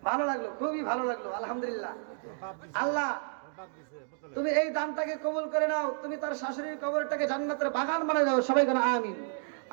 ভালো লাগলো, খুবই ভালো লাগলো, আলহামদুলিল্লাহ। আল্লাহ তুমি এই দানটাকে কবুল করে নাও, তুমি তার শাশুড়ির কবরটাকে জান্নাতের বাগান বানিয়ে দাও, সবাই কেন আমিন।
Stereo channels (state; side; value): silent; left; 57 dB below the other